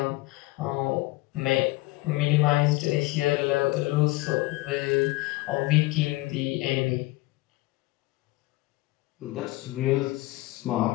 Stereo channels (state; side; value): quieter; right; 20.4 dB